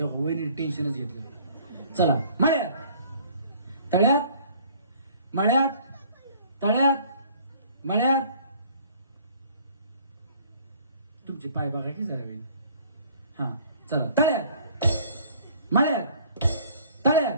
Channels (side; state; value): both; inverted; correlation -0.54